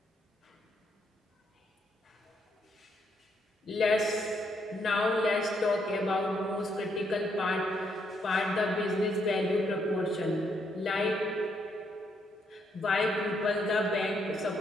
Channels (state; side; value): normal; both; correlation 0.75